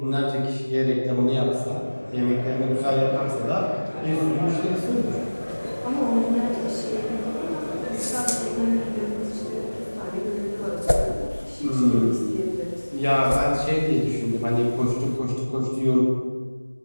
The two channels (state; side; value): inverted; both; correlation -1.00